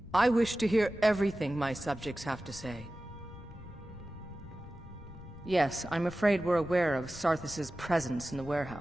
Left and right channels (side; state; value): left; noise; rumble, 19 dB below the sound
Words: I wish to hear everything my subjects have to say. Yes, I'm afraid we're aware of Sarthis' presence in the